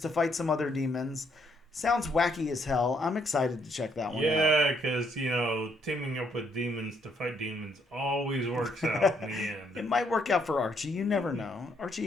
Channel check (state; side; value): normal; both; correlation 0.71